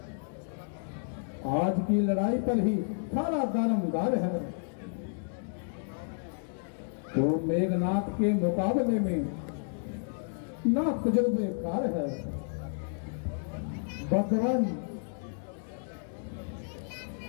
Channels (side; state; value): right; silent; digital silence